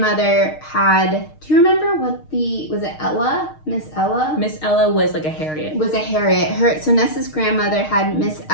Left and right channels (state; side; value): late; right; 6.5 ms